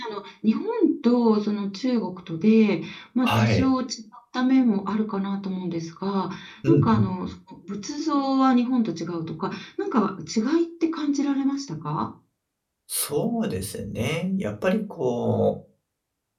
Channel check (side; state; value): both; identical; correlation 1.00